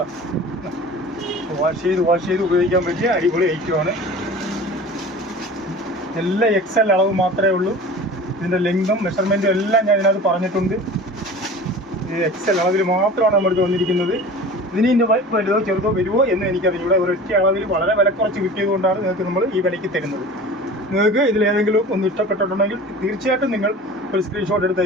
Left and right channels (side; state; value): both; normal; correlation 0.39